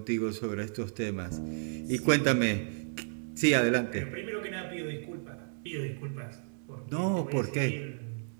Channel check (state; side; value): silent; left; digital silence